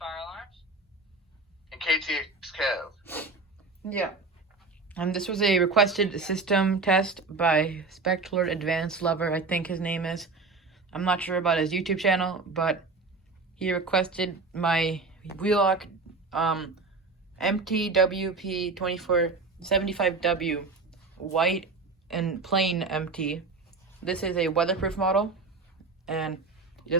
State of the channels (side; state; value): left; quieter; 3.9 dB